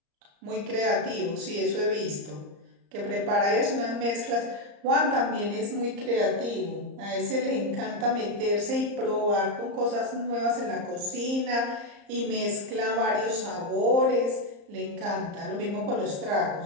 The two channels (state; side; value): late; left; 34 ms